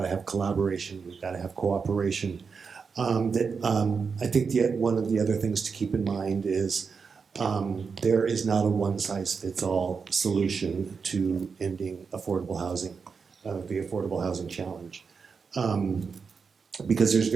to have collaboration. We've got to have cooperation. I think one of the other things to keep in mind is there is not a one-size-fits-all solution to ending affordable housing, the affordable housing challenge. Because there's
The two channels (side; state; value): left; quieter; 5.5 dB